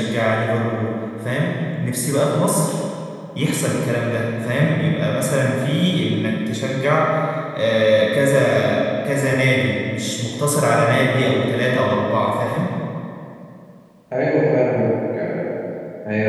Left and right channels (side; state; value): both; identical; correlation 1.00